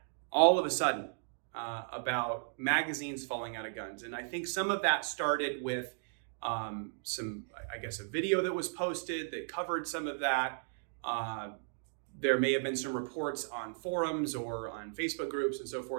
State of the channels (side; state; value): left; silent; digital silence